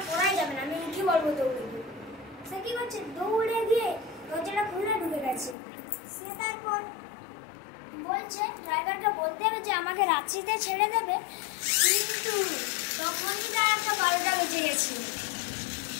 করাই যাবে না, আমি উঠি বলবো দৌড়ে গিয়ে। সে কি করছে, দৌড়ে গিয়ে দরজাটা খুলে ঢুকে গেছে। সে তারপর বলছে, ড্রাইভারটা বলতে হবে যে আমাকে রাঁচিতে ছেড়ে দেবে, কিন্তু তখনই তার একটা 12টা বেজে গেছে,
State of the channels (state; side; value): drops out; right; at 5.6 s